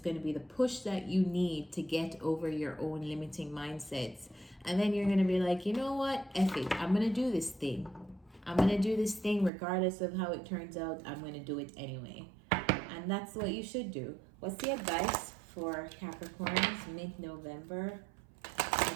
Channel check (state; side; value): drops out; left; at 9.5 s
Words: to be the push that you need to get over your own limiting mindsets. And then you're going to be like, you know what, F it, I'm going to do this thing. I'm going to do this thing regardless of how it turns out. I'm going to do it anyway. And that's what you should do. What's the advice for Capricorns mid-November?